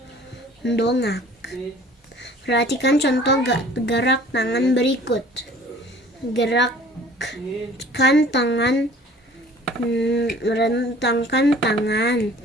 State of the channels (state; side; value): normal; both; correlation 0.50